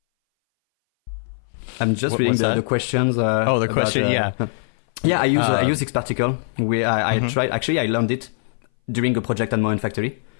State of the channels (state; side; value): silent; right; 61 dB below the other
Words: I'm just reading the questions. The question, Yeah, I use Xparticle. I tried. Actually, I learned it during a project at Moen Factory.